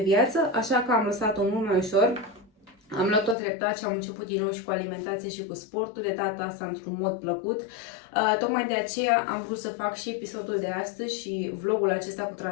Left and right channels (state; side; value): drops out; right; at 3.4 s